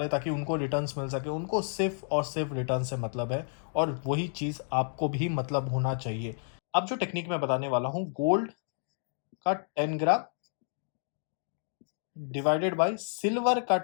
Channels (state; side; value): silent; right; digital silence